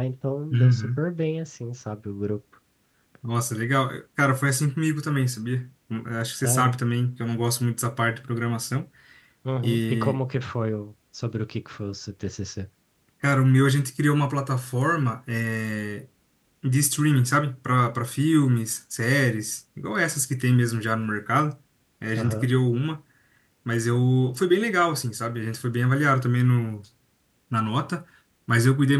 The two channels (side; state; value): both; identical; correlation 1.00